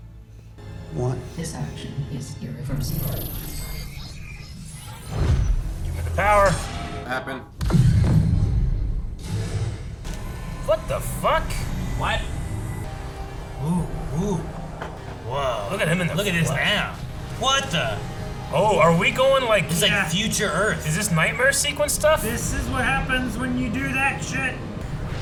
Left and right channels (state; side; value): identical; both; correlation 1.00